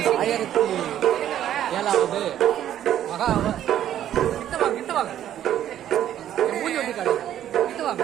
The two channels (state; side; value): quieter; left; 11.2 dB